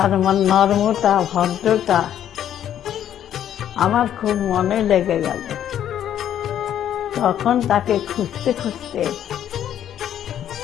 নর্মতা, ভদ্রতা আমার খুব মনে লেগে গেল। তখন তাকে খুঁজতে খুঁজতে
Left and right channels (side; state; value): right; quieter; 10.5 dB